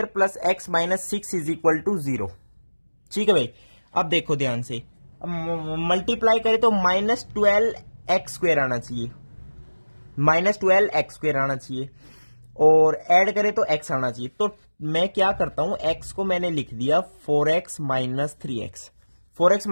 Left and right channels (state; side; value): inverted; both; correlation -1.00